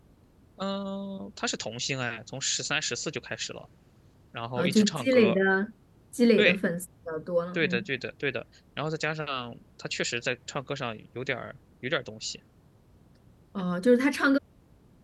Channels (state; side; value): identical; both; correlation 1.00